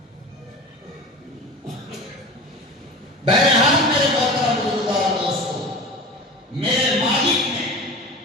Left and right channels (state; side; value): normal; both; correlation 0.34